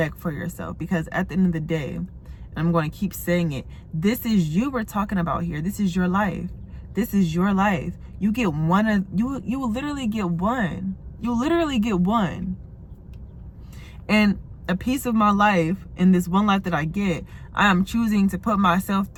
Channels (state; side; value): identical; both; correlation 1.00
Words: for yourself, because at the end of the day, and I'm going to keep saying it, this is you we're talking about here. This is your life. This is your life. You get one of you will literally get one. You'll literally get one. And a piece of my life, in this one life that I get, I am choosing to put myself